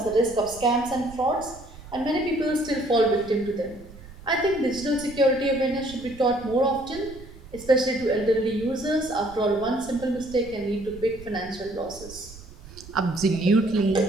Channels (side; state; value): right; noise; rumble, 18 dB below the sound